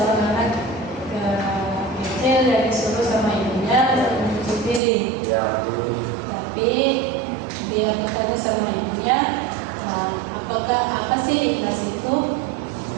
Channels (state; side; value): drops out; left; at 4.8 s